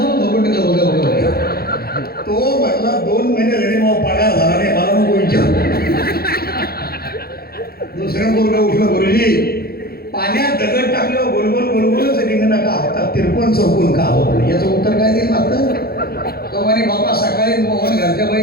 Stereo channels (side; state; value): right; late; 0.45 ms